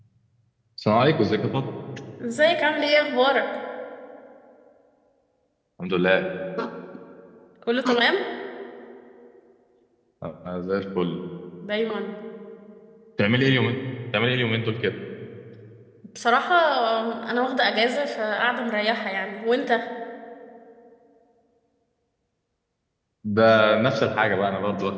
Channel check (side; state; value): both; identical; correlation 1.00